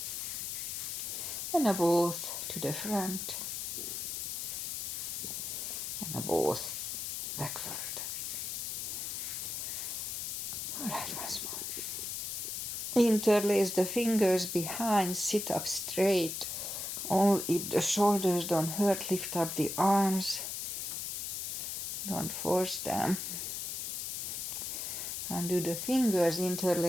and now both to the front, and both backward. All right, once more. Interlace the fingers behind, sit up straight. Only if the shoulders don't hurt, lift up the arms. Don't force them. Undo the fingers,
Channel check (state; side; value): noise; left; hiss, 4 dB below the sound